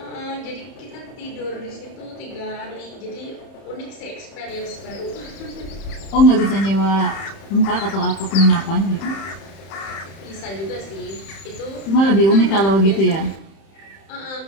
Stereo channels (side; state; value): right; late; 31 ms